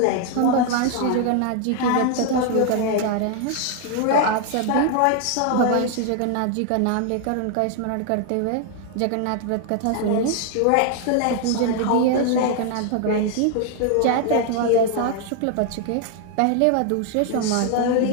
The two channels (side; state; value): both; different; correlation 0.00